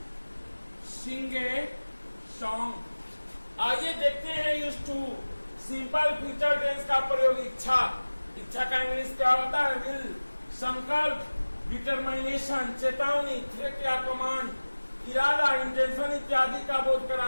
sing a song. आइए देखते हैं use to simple future tense का प्रयोग। इच्छा का इंग्लिश क्या होता है? विल। संकल्प, डिटरमिनेशन, चेतावनी, थ्रेट या कमांड, इरादा, इंटेंशन इत्यादि का बोध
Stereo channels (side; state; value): both; inverted; correlation -1.00